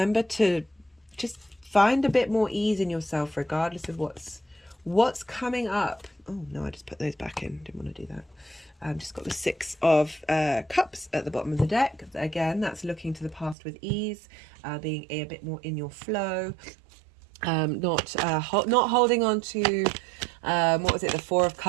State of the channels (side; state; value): left; drops out; at 13.6 s